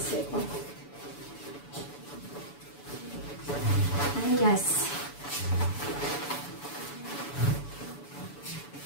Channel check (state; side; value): late; right; 7.0 ms